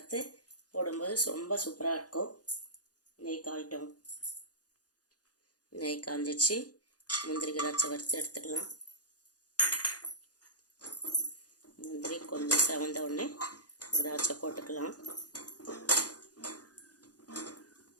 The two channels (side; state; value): right; late; 0.68 ms